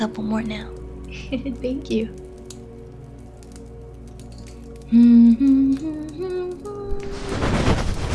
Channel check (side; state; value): both; identical; correlation 1.00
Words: more now. Thank you.